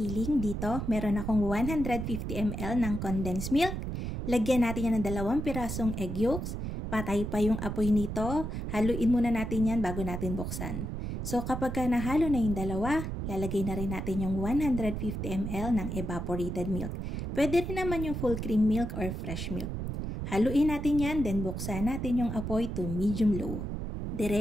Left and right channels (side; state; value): right; noise; rumble, 4 dB below the sound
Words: Dito, meron akong 150 ml ng condensed milk. Lagyan natin yan ng 2 pirasong egg yolks. Patay pa yung apoy nito. Haluin muna natin yan bago natin buksan. So kapag nahalo na yung dalawa, lalagay na rin natin yung 150 ml ng evaporated milk. Pwede rin naman yung full cream milk or fresh milk. Haluin natin yan, then buksan natin yung apoy to medium-low.